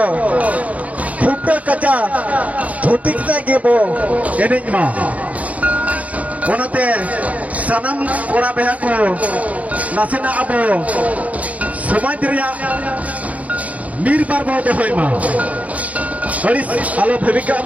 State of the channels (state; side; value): late; left; 0.069 ms